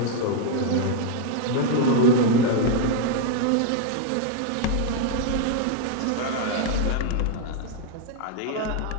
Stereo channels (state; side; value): different; both; correlation 0.01